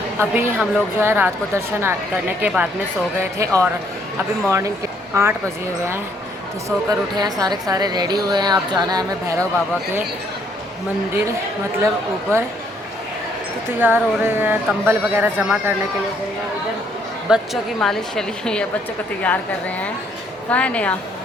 अभी हम लोग जो है रात को दर्शन करने के बाद में सो गए थे और अभी मॉर्निंग के 8 बजे हुए हैं, तो सोकर उठे हैं, सारे के सारे रेडी हुए हैं। अब जाना है हमें भैरव बाबा के मंदिर, मतलब ऊपर, तो तैयार हो रहे हैं। कंबल वगैरह जमा करने के लिए गए हैं। इधर बच्चों की मालिश चली हुई है, बच्चों को तैयार कर रहे हैं। कहाँ है नया?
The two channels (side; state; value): both; normal; correlation 0.68